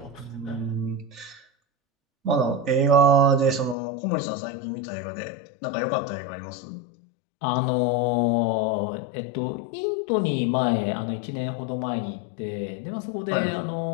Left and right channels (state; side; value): drops out; right; at 3.8 s